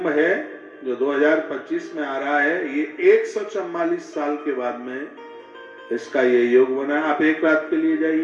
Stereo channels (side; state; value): both; identical; correlation 1.00